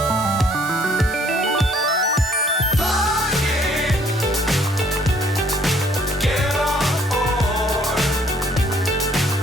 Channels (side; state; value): both; normal; correlation 0.62